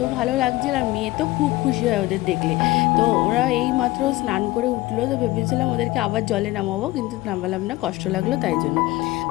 ভালো লাগছিল, আর মেয়ে তো খুব খুশি হয় ওদের দেখলে। তো ওরা এই মাত্র স্নান করে উঠলো, তো ভেবেছিলাম ওদেরকে আবার জলে নামাবো, কিন্তু নামালাম না, কষ্ট লাগলো তাই জন্য।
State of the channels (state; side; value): quieter; right; 18.8 dB